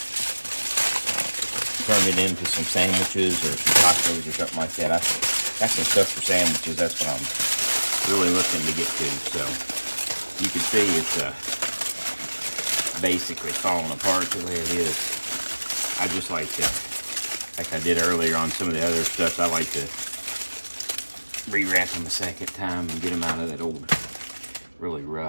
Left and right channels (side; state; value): both; inverted; correlation -1.00